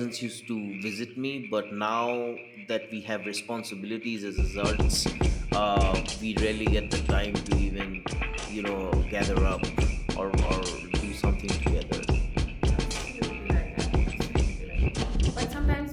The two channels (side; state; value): both; identical; correlation 1.00